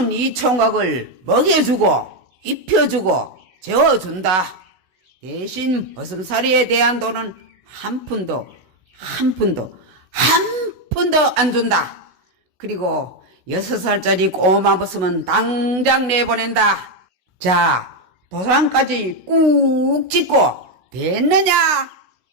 이 총각을 먹여주고 입혀주고 재워준다. 대신 머슴살이에 대한 돈은 한 푼도 안 준다. 그리고 6살짜리 꼬마 머슴은 당장 내보낸다. 자, 도장까지 꾹 찍고 됐느냐?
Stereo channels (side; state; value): left; late; 16 ms